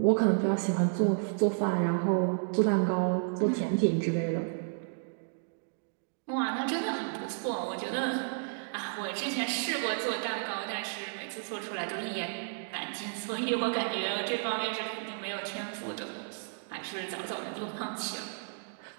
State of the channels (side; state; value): left; silent; digital silence